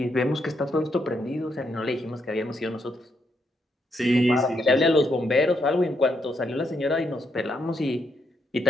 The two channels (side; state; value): both; normal; correlation 0.78